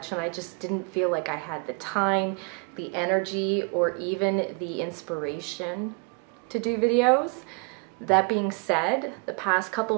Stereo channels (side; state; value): left; quieter; 33.0 dB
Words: and I just didn't feel like I had the time, the energy, or even the inspiration to do videos. That being said, the past couple